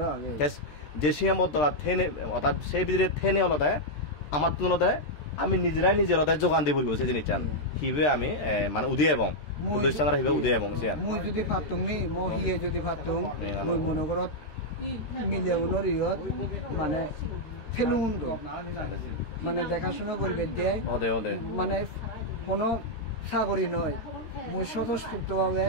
যে সীমাবদ্ধতা থেনে অর্থাৎ সেই ভিতরে থেনে হলতে আমার তুলতে আমি নিজেরাই নিজের যোগান দিব সেই জিনিস চান হিবে আমি মানে উদয় এবং প্রতিষ্ঠানরা হিবে উদয় এবং মই যদি ফাতুং নি মই হিয়ে যদি ফাতুং মই মনে করত মিলে উনরিয়ত মানে ফেলুন মানে দেখাশোনা করবে দেয় মানে কোনো সাগরী নয় মই স্বতঃস্ফূর্তভাবে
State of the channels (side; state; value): right; late; 13 ms